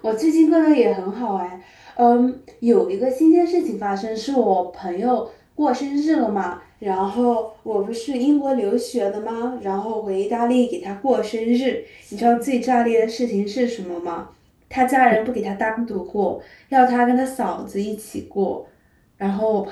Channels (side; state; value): both; identical; correlation 1.00